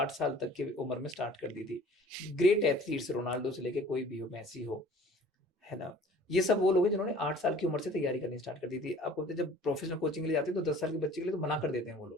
साल तक की उम्र में स्टार्ट कर दी थी। ग्रेट एथलीट्स, रोनाल्डो से लेके कोई भी हो, मेसी हो, है ना, ये सब वो लोग हैं जिन्होंने 8 साल की उम्र से तैयारी करनी स्टार्ट कर दी थी। आपको पता है जब प्रोफेशनल कोचिंग के लिए जाते हैं तो 10 साल के बच्चे के लिए तो मना कर देते हैं वो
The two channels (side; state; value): both; normal; correlation 0.49